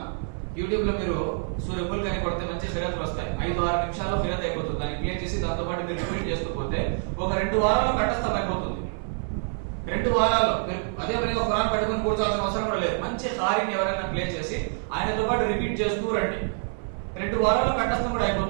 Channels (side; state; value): left; silent; 55 dB below the other